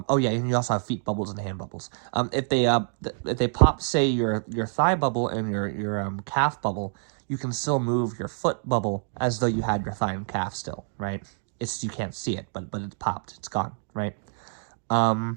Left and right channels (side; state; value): left; silent; digital silence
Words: yeah, and you also have feet bubbles and hand bubbles. If they pop, say, your thigh bubble and your calf bubble, you can still move your foot bubble as though you had your thigh and calf still, right? It's, you can't see it, but it's popped, it's gone, right? Now